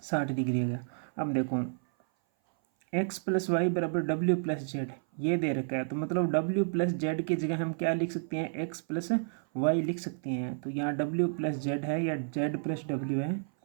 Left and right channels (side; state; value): left; silent; 56 dB below the other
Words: डिग्री आ गया। अब देखो x प्लस वाई बराबर डब्ल्यू प्लस जेड ये दे रखा है, तो मतलब w प्लस जेड की जगह हम क्या लिख सकते हैं? x प्लस वाई लिख सकते हैं। तो यहाँ w प्लस जेड है या z प्लस w है,